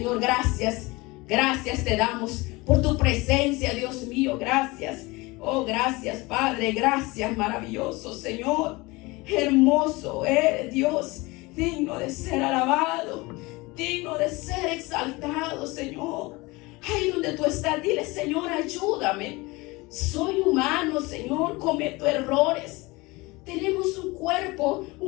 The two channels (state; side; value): quieter; right; 23.3 dB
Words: gracias. Gracias te damos por tu presencia, Dios mío. Gracias. Oh, gracias, Padre. Gracias, maravilloso Señor. Hermoso eres, Dios. Digno de ser alabado. Digno de ser exaltado, Señor. Ahí donde tú estás, dile: Señor, ayúdame. Soy humano, Señor. Cometo errores. Tenemos un cuerpo